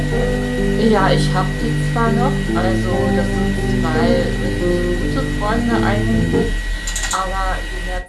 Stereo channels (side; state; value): both; identical; correlation 1.00